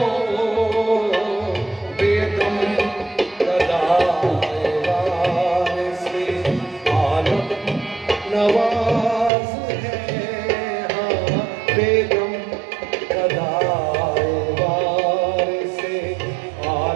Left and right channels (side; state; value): left; drops out; at 9.3 s